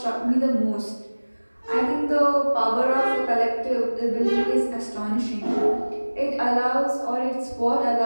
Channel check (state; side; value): inverted; both; correlation -1.00